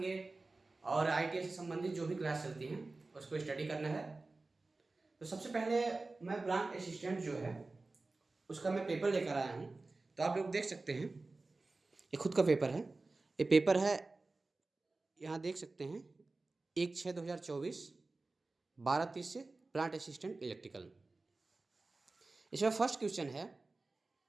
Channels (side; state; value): left; quieter; 3.4 dB